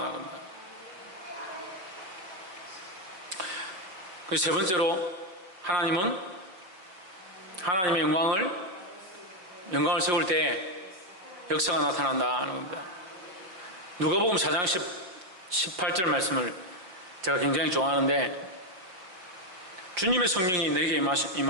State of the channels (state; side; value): late; left; 5.5 ms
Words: 겁니다. 그래서 세 번째로, 하나님은 하나님의 영광을 세울 때 역사가 나타난다는 겁니다. 누가복음 4장 18절 말씀을 제가 굉장히 좋아하는데, 주님의 성령이 내게